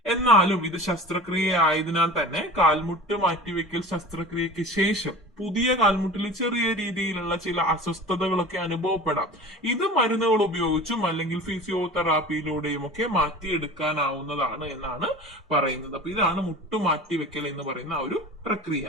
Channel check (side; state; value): both; normal; correlation 0.37